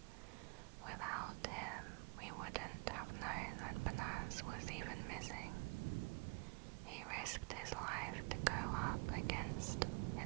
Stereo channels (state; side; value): quieter; left; 32.0 dB